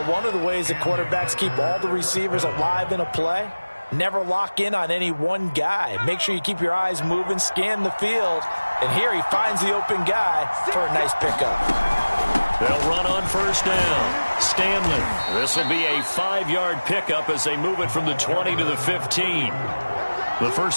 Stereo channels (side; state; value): both; inverted; correlation -1.00